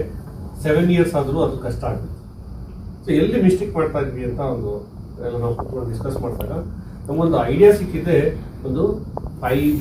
7 ಇಯರ್ಸ್ ಆದರೂ ಅದು ಕಷ್ಟ ಆಗುತ್ತೆ. ಸೊ ಎಲ್ಲಿ ಮಿಸ್ಟೇಕ್ ಮಾಡ್ತಾ ಇದ್ವಿ ಅಂತ ಎಲ್ಲ ನಾವು ಕೂತ್ಕೊಂಡು ಡಿಸ್ಕಸ್ ಮಾಡಿದಾಗ ನಮಗೊಂದು ಐಡಿಯಾ ಸಿಕ್ಕಿದೆ. ಒಂದು 5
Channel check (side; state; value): both; identical; correlation 1.00